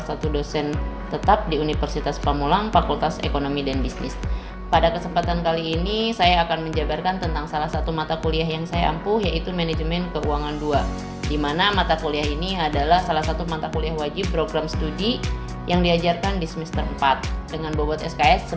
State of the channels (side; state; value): both; identical; correlation 1.00